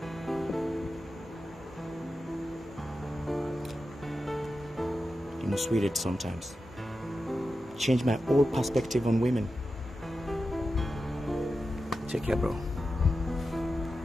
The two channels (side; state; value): both; normal; correlation 0.91